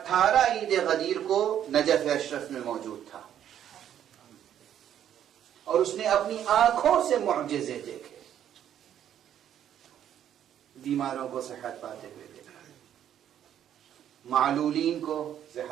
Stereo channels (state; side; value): quieter; left; 10.3 dB